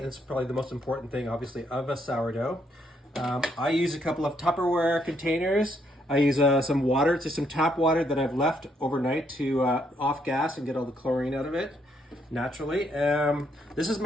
probably the most important thing, obviously, of a sourdough. I use a couple of Tupperware containers. I use some water, just some tap water that I've left overnight to off gas and get all the chlorine out of it naturally. This is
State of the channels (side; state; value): both; normal; correlation 0.73